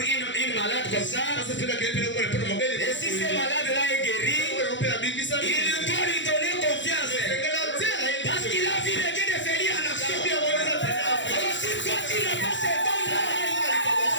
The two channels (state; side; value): late; right; 0.54 ms